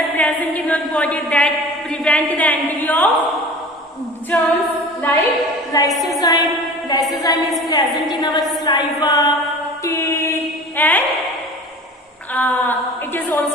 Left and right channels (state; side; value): normal; both; correlation 0.40